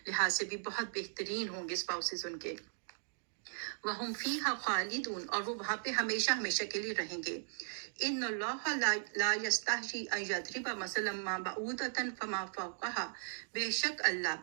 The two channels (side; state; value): left; silent; digital silence